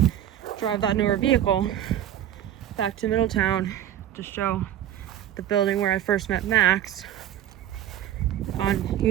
drive that newer vehicle back to Middletown to show the building where I first met Max on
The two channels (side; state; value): left; quieter; 11.4 dB